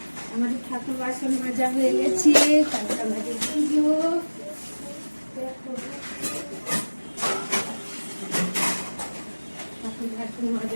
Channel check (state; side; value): inverted; both; correlation -1.00